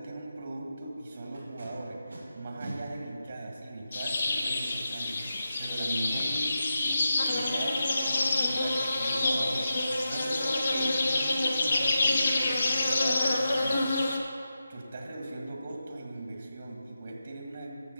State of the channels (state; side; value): inverted; both; correlation -0.89